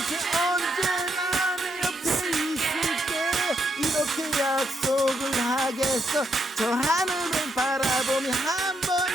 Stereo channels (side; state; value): both; normal; correlation 0.78